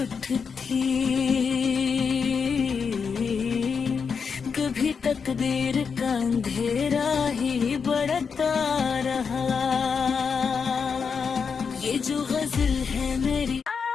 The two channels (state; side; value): quieter; right; 5.9 dB